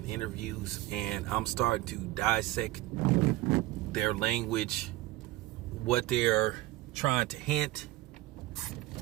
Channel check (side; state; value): left; quieter; 17.7 dB